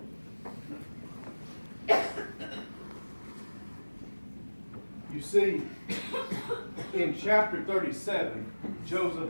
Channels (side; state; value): both; inverted; correlation -1.00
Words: You see, in chapter 37,